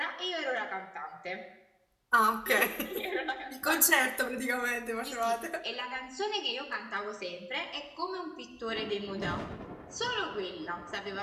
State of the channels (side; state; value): both; identical; correlation 1.00